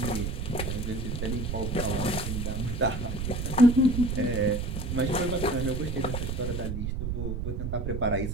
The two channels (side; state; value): right; noise; rumble, 2 dB below the sound